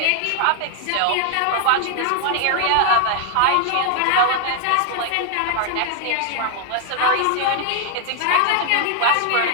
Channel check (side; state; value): both; different; correlation 0.00